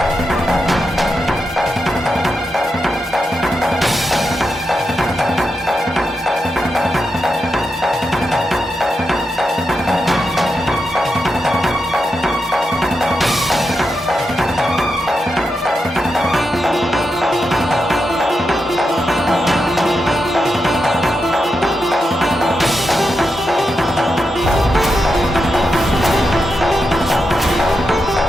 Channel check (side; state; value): both; normal; correlation 0.86